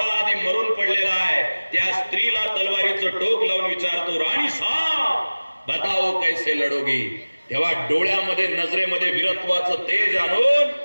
आधी मरून पडलेला आहे, त्या स्त्रीला तलवारीचं टोक लावून विचारतो, राणी साहब बताओ कैसे लढोगी? तेव्हा डोळ्यामध्ये नजरेमध्ये वीरत्वाचं तेज आणून,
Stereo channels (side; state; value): both; inverted; correlation -1.00